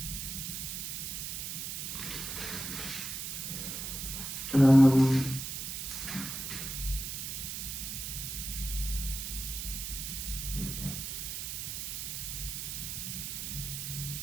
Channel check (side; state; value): right; noise; hiss, 4 dB below the sound